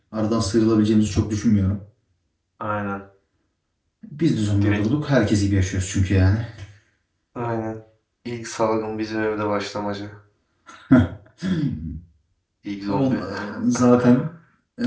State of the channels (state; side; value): identical; both; correlation 1.00